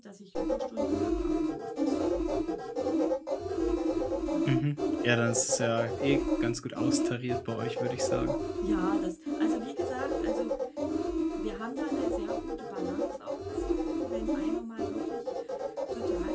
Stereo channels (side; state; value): both; identical; correlation 1.00